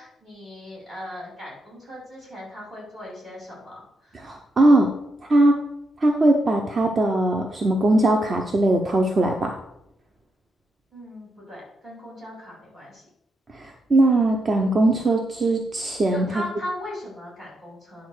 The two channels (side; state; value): both; normal; correlation 0.83